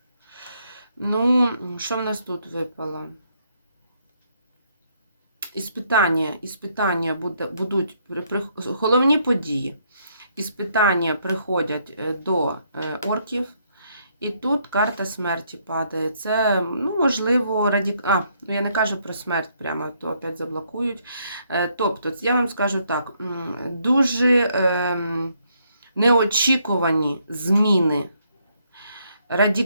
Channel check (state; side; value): inverted; both; correlation -0.72